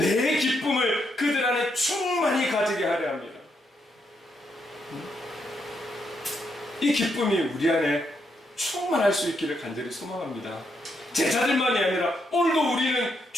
기쁨을 그들 안에 충만히 가지게 하려 합니다. 이 기쁨이 우리 안에 충만할 수 있기를 간절히 소망합니다. 제자들만이 아니라 오늘도 우리는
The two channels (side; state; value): both; normal; correlation 0.79